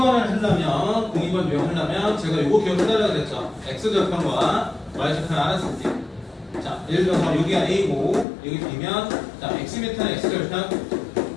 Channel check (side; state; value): right; drops out; at 8.2 s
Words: 하려면 02번 유형하려면 제가 요거 기억해달라고 그랬죠. X좌표과 Y좌표를 알았을 때 자, 예를 들어서 여기가 A고 여기 B면 자, X미터는 X좌표